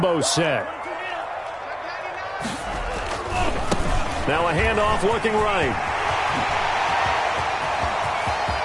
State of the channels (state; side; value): identical; both; correlation 1.00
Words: set. Now a handoff looking right.